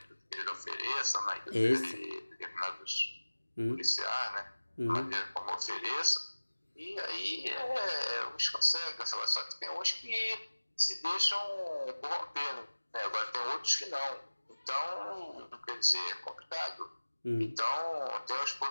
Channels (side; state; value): both; inverted; correlation -1.00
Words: eles ofereçam, né, que determinados policiais, né, maneira como ofereçam, e aí uns conseguem, só que tem uns que se deixam corromper, né? Agora tem outros que não. Então, quer dizer, é complicado. Então, tem os